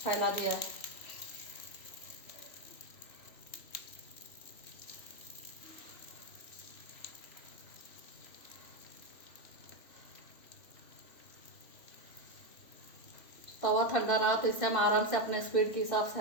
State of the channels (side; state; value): right; late; 3.1 ms